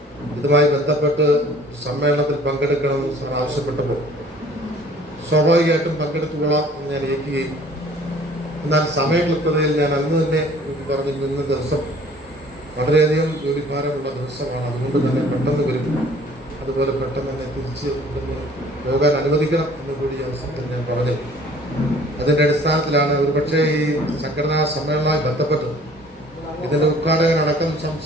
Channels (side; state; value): both; normal; correlation 0.52